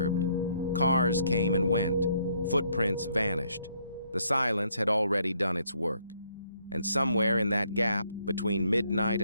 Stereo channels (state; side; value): inverted; both; correlation -0.69